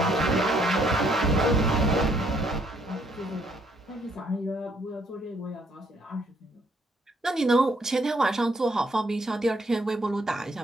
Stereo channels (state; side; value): normal; both; correlation 0.69